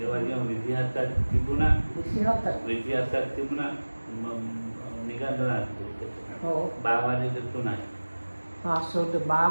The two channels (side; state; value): both; inverted; correlation -1.00